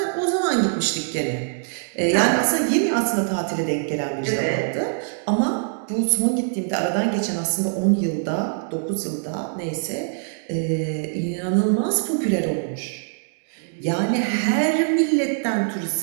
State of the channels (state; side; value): silent; left; digital silence